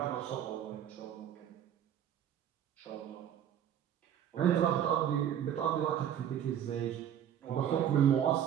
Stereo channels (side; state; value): left; quieter; 9.9 dB